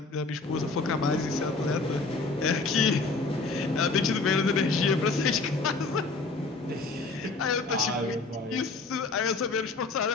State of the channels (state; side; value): quieter; right; 3.8 dB